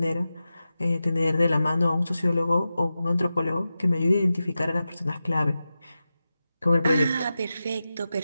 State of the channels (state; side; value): inverted; both; correlation -0.93